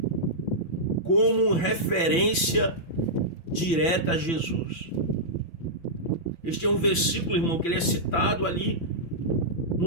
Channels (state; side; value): late; right; 5.9 ms